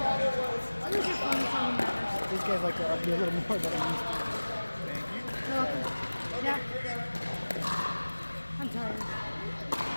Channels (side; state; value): both; inverted; correlation -1.00